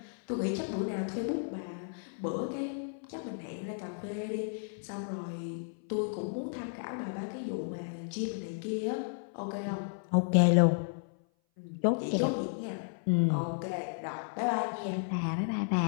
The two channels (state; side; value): silent; right; 56 dB below the other